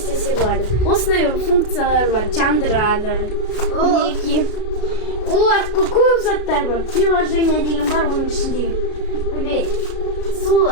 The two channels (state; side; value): late; right; 33 ms